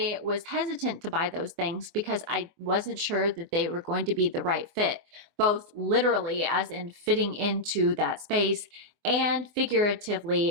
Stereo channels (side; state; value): left; late; 24 ms